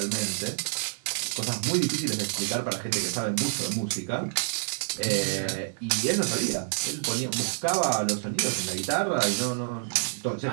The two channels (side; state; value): left; silent; digital silence